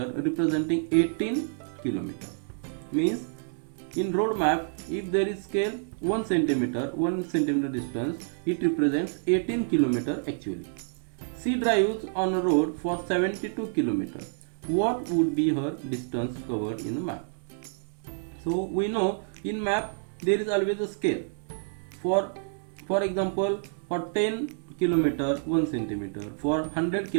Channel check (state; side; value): silent; left; digital silence